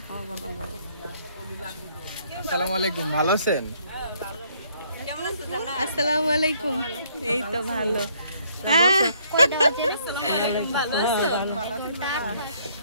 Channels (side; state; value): both; inverted; correlation -0.66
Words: আসসালামু আলাইকুম, ভালো আছেন? আসসালামু আলাইকুম, এই তো ভালো।